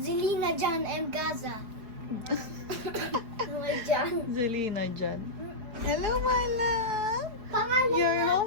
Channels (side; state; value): left; late; 4.8 ms